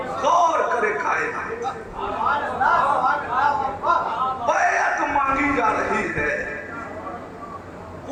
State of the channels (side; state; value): both; identical; correlation 1.00